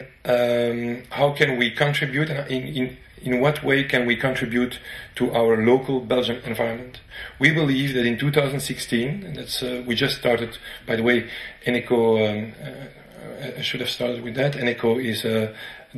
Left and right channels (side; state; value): both; identical; correlation 1.00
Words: how can we contribute in what way can we contribute to our local Belgian environment? We believe that in 2016, and that's we just started. By the way, Eneco. I should have started with that. Eneco is a